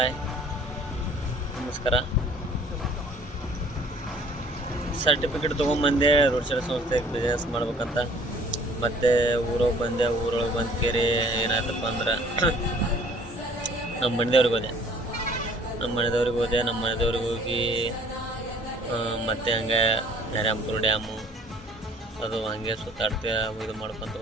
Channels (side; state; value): both; normal; correlation 0.54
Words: ನಮಸ್ಕಾರ. Certificate ತೊಗೊಂಬಂದೆ road side ಸಂಸ್ಥೆಗೆ business ಮಾಡ್ಬೇಕಂತ. ಮತ್ತು ಊರೊಳಗೆ ಬಂದೆ. ಊರೊಳಗೆ ಬಂದು ಕೇರಿ ಏನಾಯ್ತಪ್ಪ ಅಂದ್ರೆ ನಮ್ಮ ಮನೆದೇವ್ರಿಗೆ ಹೋದೆ. ನಮ್ಮ ಮನೆದೇವ್ರಿಗೆ ಹೋಗಿ ಮತ್ತೆ ಹಂಗೆ ನರ್ಯಾಂಪುರ ಡ್ಯಾಮು ಅದು ಹಂಗೆ ಸುತ್ತಾಡ್ತಾ ಇದು ಮಾಡ್ಕೊತ